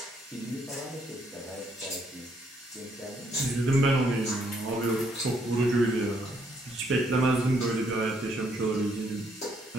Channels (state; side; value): normal; both; correlation 0.71